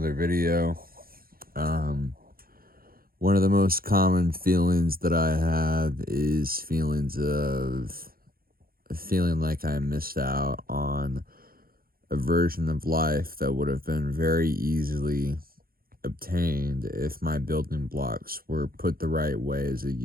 video. Um, One of the most common feelings that I have is feelings of feeling like I missed out on a version of life that would have been very easily obtained if my building blocks were put the right way as a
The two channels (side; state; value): left; late; 0.43 ms